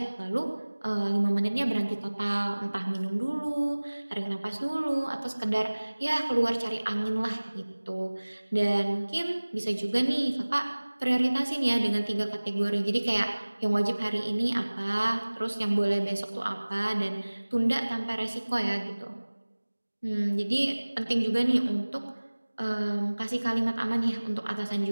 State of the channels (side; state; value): both; inverted; correlation -1.00